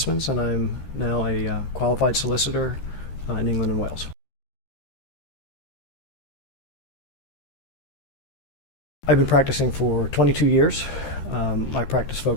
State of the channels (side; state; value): right; late; 13 ms